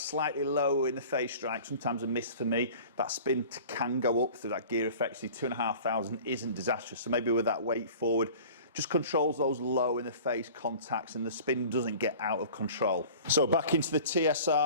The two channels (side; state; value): both; inverted; correlation -0.43